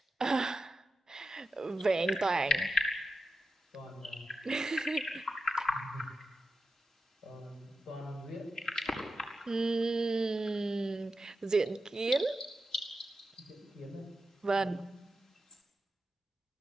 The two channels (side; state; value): both; normal; correlation 0.89